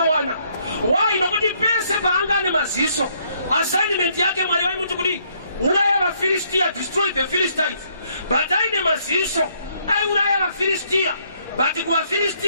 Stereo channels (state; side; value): inverted; both; correlation -0.69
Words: Why? Nokuti pese paanga ane maziso assignment yake Mwari vaimuti kuti uraya vaFilistia, destroy the Philistines. But aine maziso aiuraya vaFilistia, but